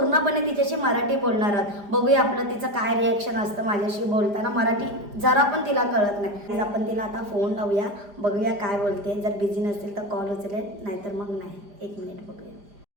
तिच्याशी मराठी बोलणार आहोत. बघूया आपलं तिचं काय रिॲक्शन असतं माझ्याशी बोलताना. मराठी जरा पण तिला कळत नाही. आपण तिला आता फोन लावूया, बघूया काय बोलते. जर बिझी नसेल तर कॉल उचलेल, नाहीतर मग नाही. 1 मिनिट बघूया.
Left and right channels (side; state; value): left; late; 4.9 ms